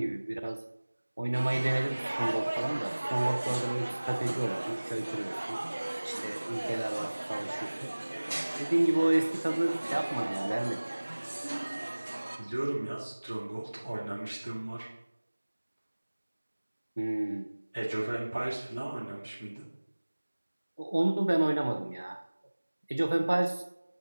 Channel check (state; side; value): inverted; both; correlation -1.00